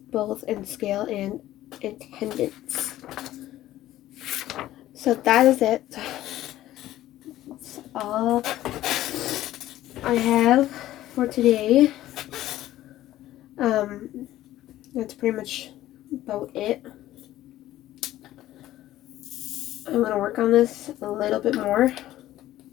both in scale and attendance. So that is it. That's all I have for today. That's pretty much about it. I'm going to work on this a little bit more.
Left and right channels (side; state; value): right; quieter; 14.3 dB